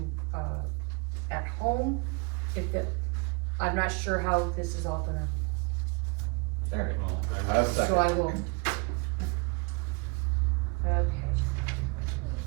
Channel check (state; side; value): quieter; left; 29.8 dB